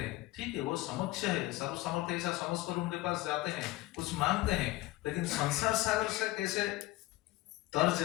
हैं। ठीक है, वो समक्ष है, सर्व समर्थ ऐसा समझकर उनके पास जाते हैं, कुछ मांगते हैं, लेकिन संसार सागर से कैसे तर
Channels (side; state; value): right; quieter; 18.3 dB